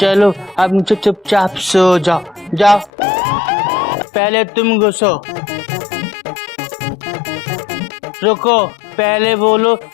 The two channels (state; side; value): drops out; right; at 2.9 s